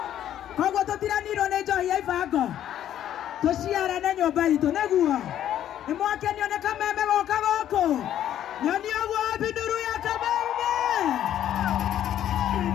koguo tutiranirwo ni njohi ya ibango tuciarane nyumba itu neguo nimwakenio ni kameme goka goko nyoni oguo binduru ya kameme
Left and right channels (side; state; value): right; quieter; 11.1 dB